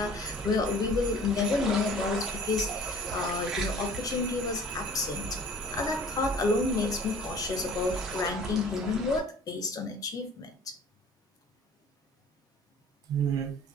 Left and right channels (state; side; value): normal; both; correlation 0.48